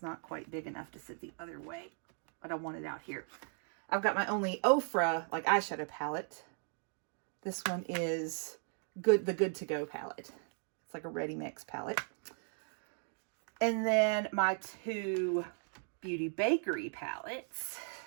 not quite big enough to sit the other way, but I want it out here. I've got my only Ofra like eyeshadow palette. This one is the Good to Go palette. It's like a ready mix palette. And then my 2 Beauty Bakery palettes.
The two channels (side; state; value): left; silent; 53 dB below the other